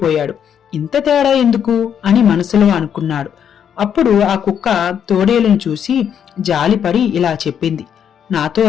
ఇంత తేడా ఎందుకు అని మనసులో అనుకున్నాడు. అప్పుడు ఆ కుక్క తోడేలును చూసి జాలిపడి ఇలా చెప్పింది, నాతో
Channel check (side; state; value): right; quieter; 8.5 dB